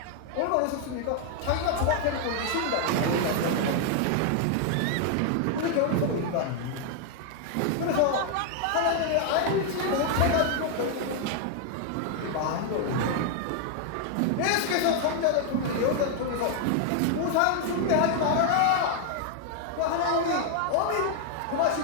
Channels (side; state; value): both; different; correlation 0.00